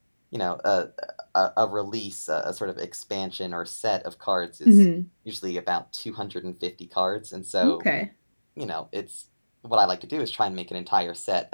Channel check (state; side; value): inverted; both; correlation -1.00